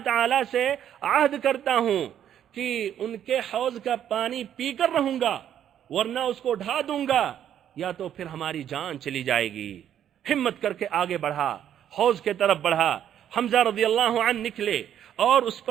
تعالیٰ سے عہد کرتا ہوں کہ ان کے حوض کا پانی پی کر رہوں گا ورنہ اس کو ڈھا دوں گا یا تو پھر ہماری جان چلی جائے گی۔ ہمت کر کے آگے بڑھا، حوض کے طرف بڑھا۔ حمزہ رضی اللہ عنہ نکلے اور اس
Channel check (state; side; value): quieter; left; 10.1 dB